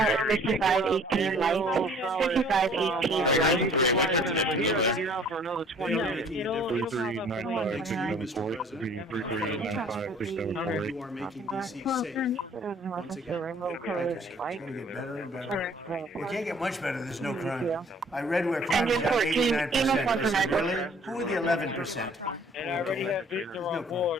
5518 light, 5518 light. For another 20 minutes. 3395 674. You are making DC safe. Once again, It's going to get better and better. It can't get much better. There's no crime. I read where crime is down 89%. Really? Who are the 11%? And I already have Victor on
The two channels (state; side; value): normal; both; correlation 0.54